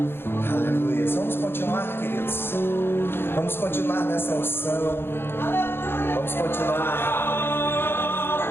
Aleluias. Vamos continuar, queridos. Vamos continuar nessa unção. Vamos continuar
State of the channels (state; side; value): late; right; 0.11 ms